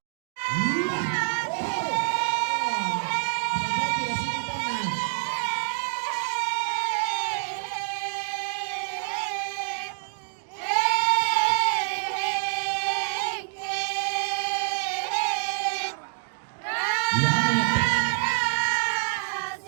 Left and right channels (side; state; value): left; silent; digital silence